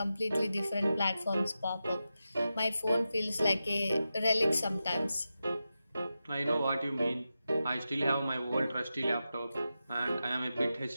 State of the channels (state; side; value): inverted; both; correlation -0.91